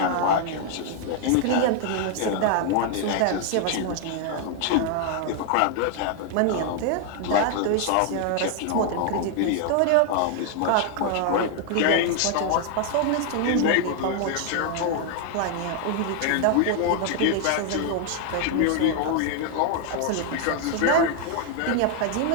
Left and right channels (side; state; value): both; different; correlation 0.00